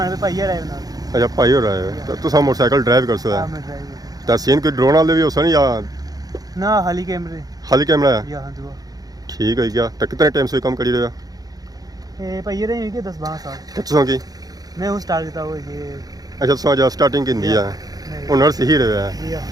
पे भाई आए ना अच्छा भाई हो रहे हो तो तुम मोटरसाइकिल ड्राइव कर सो तो सीन कोई ड्रोन वाले भी हो सन या ना खाली कैमरा है या हां दुआ ठीक है क्या तो कितने टाइम से काम करी रहे हो ए भाई रहे हैं कि 10-12 साल कितने की मैं हूं स्टार्ट करता हूं ये अच्छा सो जा स्टार्टिंग की दी है हुनर से ही रहे है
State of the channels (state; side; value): late; left; 0.18 ms